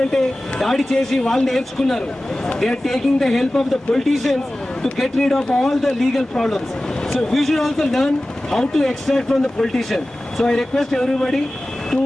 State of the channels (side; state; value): both; normal; correlation 0.96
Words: దాడి చేసి వాళ్ళు నేర్చుకున్నారు. They are taking the help of the politicians to get rid of all the legal problems. So we should also learn how to extract from the politician. So I request everybody to